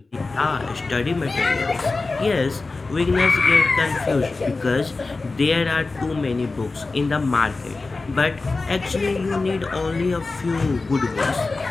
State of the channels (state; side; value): quieter; right; 3.7 dB